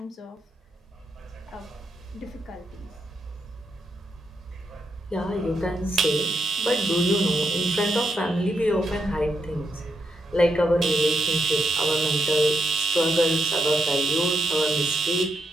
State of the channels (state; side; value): normal; both; correlation 0.81